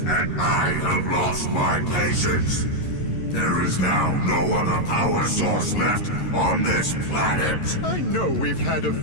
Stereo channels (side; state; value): right; late; 11 ms